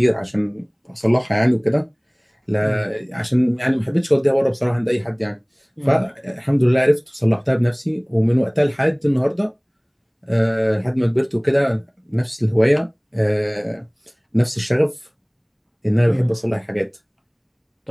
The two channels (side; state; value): both; identical; correlation 1.00